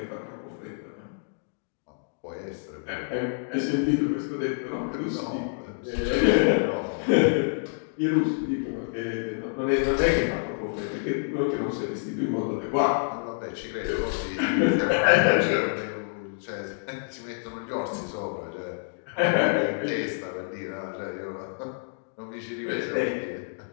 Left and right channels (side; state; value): right; silent; digital silence